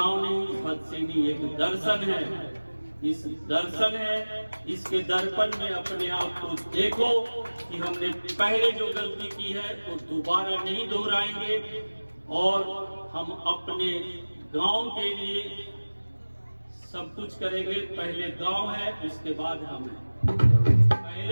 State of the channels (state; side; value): inverted; both; correlation -1.00